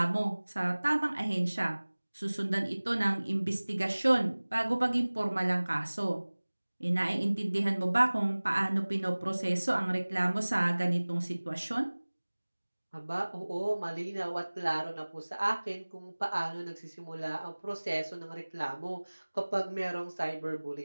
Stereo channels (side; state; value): both; inverted; correlation -1.00